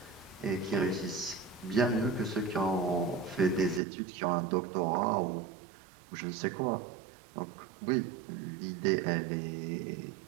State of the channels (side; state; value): left; drops out; at 3.8 s